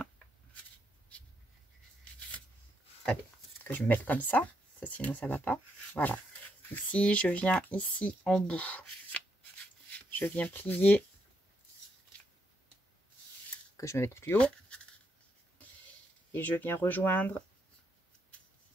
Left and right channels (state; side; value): normal; both; correlation 0.78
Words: Allez, que je me mette comme ça. Sinon, ça va pas. Voilà. Ici, je viens ici en bout. Je viens plier. Que je me mette plus haut. Et je viens rejoindre